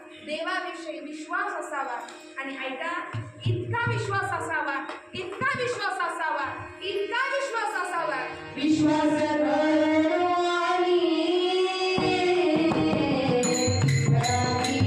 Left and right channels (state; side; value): identical; both; correlation 1.00